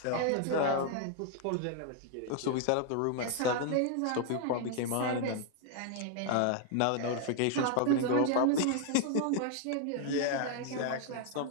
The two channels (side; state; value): both; different; correlation 0.00